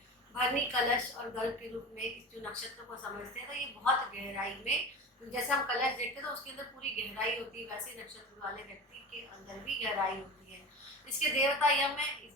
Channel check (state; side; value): normal; both; correlation 0.31